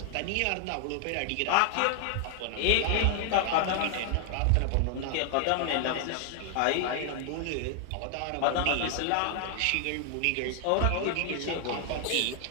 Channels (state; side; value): different; both; correlation 0.00